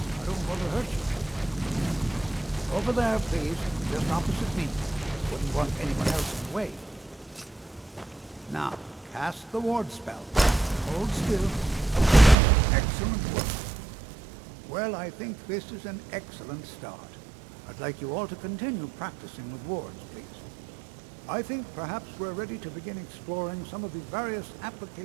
don't want to hurt you. Over there, please, just opposite me. Wouldn't want anyone else in the way. Now, cast the ward spell. Hold still. Excellent work. Well, I think this is an excellent start. I'd like you all to continue practicing with wards, please. I think perhaps we're ready to begin exploring some of the various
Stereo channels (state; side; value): drops out; left; at 12.4 s